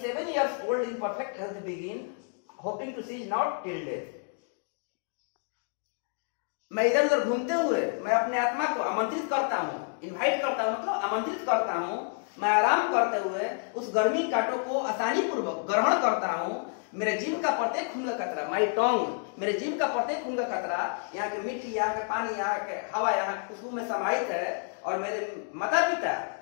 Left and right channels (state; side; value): silent; right; 58 dB below the other